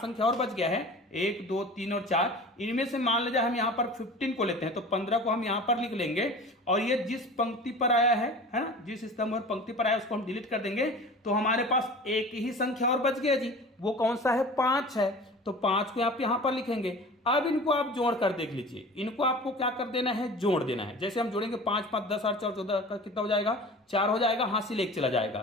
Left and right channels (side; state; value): both; normal; correlation 0.39